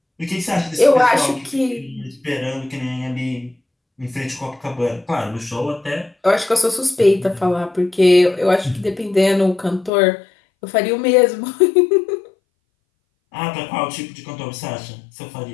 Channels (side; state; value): right; drops out; at 9.9 s